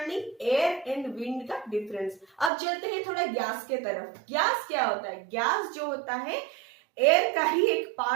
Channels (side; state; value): left; drops out; at 2.5 s